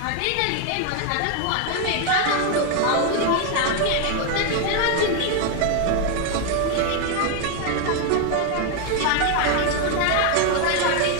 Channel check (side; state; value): both; different; correlation 0.01